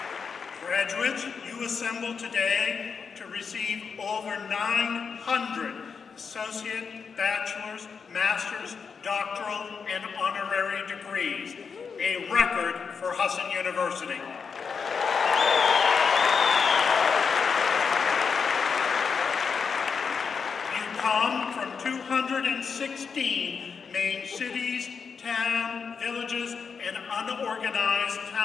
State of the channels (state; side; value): quieter; right; 5.8 dB